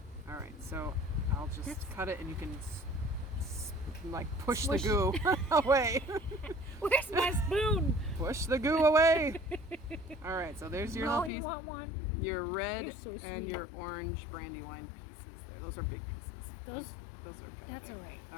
All right, so I'll just cut it and you can like push Smush. the goo away. Where's my spoon? Push the goo away. All right, so there's your No, little you piece. want one? Your red You're so and sweet. your orange Brandywine pieces there. Those are big pieces. Those, Those are kind that's of all right.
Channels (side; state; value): right; drops out; at 11.3 s